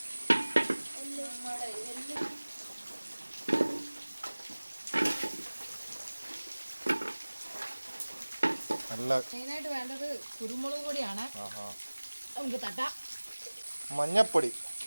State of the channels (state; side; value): inverted; both; correlation -1.00